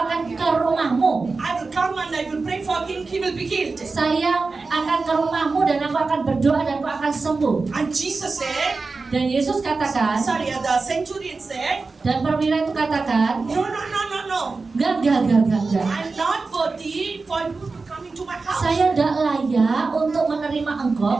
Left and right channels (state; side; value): quieter; left; 4.0 dB